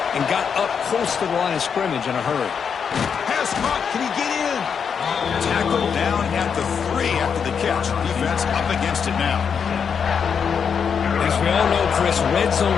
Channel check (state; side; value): quieter; right; 6.8 dB